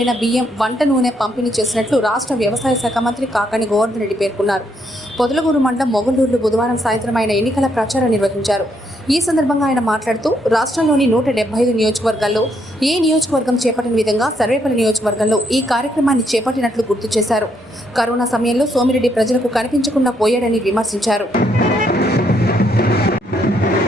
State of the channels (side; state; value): both; normal; correlation 0.74